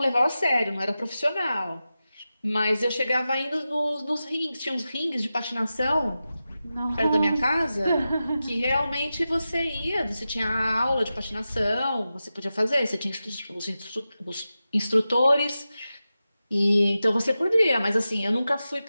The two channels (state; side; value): inverted; both; correlation -0.93